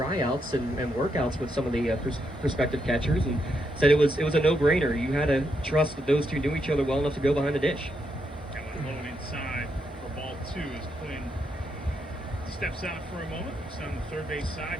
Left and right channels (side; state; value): both; normal; correlation 0.80